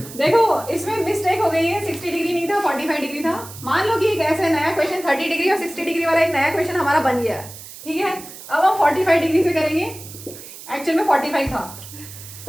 देखो इसमें मिस्टेक हो गई है, 60 डिग्री नहीं था 45 डिग्री था। मान लो कि एक ऐसा नया क्वेश्चन 30 डिग्री और 60 डिग्री वाला एक नया क्वेश्चन हमारा बन गया है, ठीक है। अब हम 45 डिग्री से करेंगे, एक्चुअल में 45 था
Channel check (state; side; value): noise; right; hiss, 15 dB below the sound